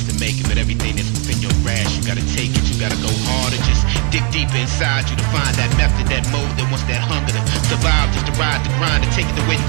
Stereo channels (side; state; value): left; quieter; 35.9 dB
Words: to make it. But everything that's within your grasp, you gotta take it, you gotta go harder, just dig deeper inside you to find that method, that mode that wants that hunger to survive, just to ride the grind, to take it the way you